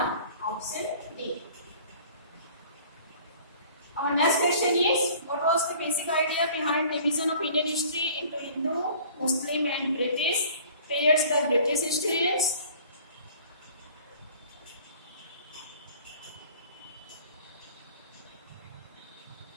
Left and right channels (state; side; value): inverted; both; correlation -0.49